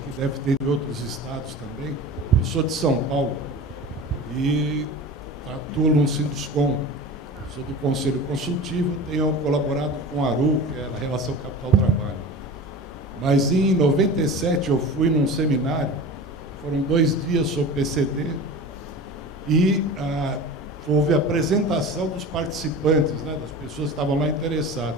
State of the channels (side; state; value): both; normal; correlation 0.34